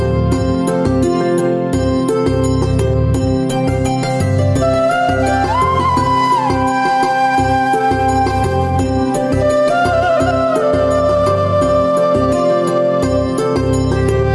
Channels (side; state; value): both; identical; correlation 1.00